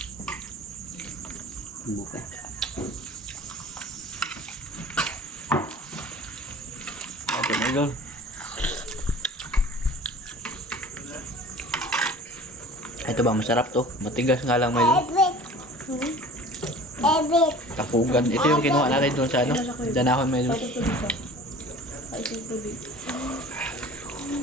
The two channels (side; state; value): both; normal; correlation 0.43